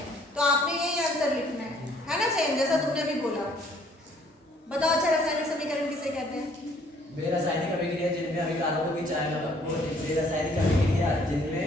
तो आपने यही आंसर लिखना है ना, सेम जैसा तुमने भी बोला। बताओ अच्छा, रासायनिक समीकरण किसे कहते हैं? रासायनिक अभिक्रिया जिनमें अभिकारकों को रासायनिक अभिक्रिया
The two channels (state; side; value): normal; both; correlation 0.61